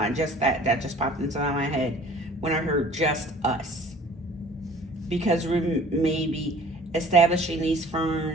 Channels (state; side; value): normal; both; correlation 0.49